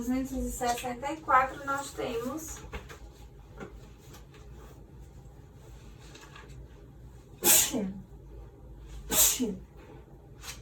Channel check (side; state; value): both; identical; correlation 1.00